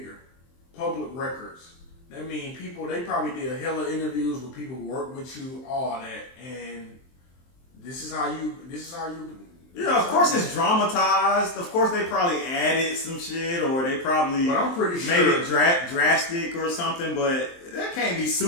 public records. That means people. They probably did a hell of interviews with people who work with you, all that, and this is how you. Yeah, of course it's dramatized. Of course they probably added some shit, or they probably but I'm pretty sure made it drastic or something. But that can't be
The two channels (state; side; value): late; right; 23 ms